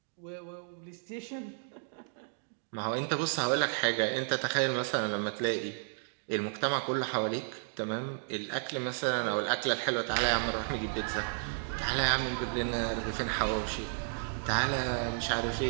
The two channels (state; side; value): silent; left; digital silence